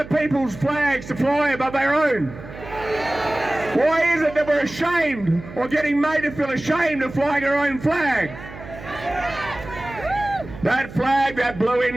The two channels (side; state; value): right; noise; hum, 15 dB below the sound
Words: people's flags to fly above our own? Why is it that we're ashamed or getting made to feel ashamed of flying our own flag? That flag, that blue